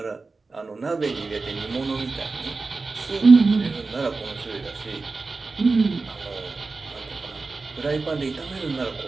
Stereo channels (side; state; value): left; quieter; 3.9 dB